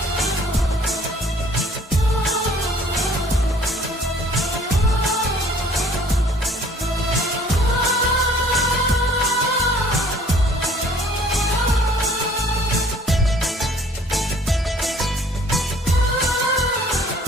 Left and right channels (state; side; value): normal; both; correlation 0.55